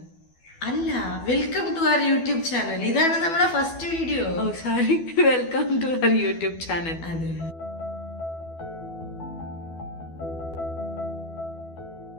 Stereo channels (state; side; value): late; right; 12 ms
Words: അല്ല, welcome to our YouTube channel. ഇതാണ് നമ്മുടെ first video. Oh sorry, welcome to our YouTube channel. അതെ.